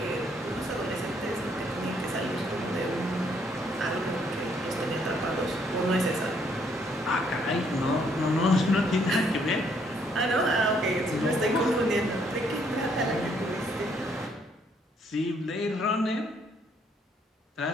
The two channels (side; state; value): both; normal; correlation 0.69